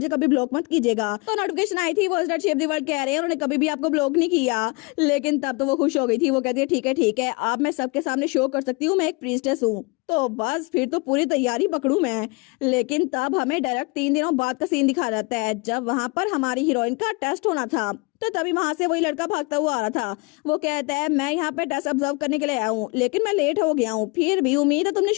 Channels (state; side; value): quieter; right; 28.2 dB